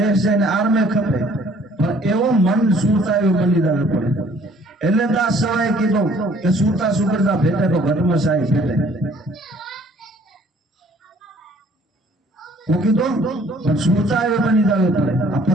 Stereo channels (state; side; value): normal; both; correlation 0.58